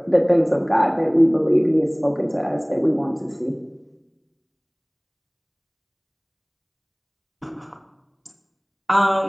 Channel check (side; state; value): both; identical; correlation 1.00